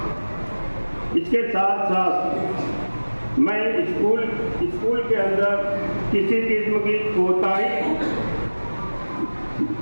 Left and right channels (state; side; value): inverted; both; correlation -1.00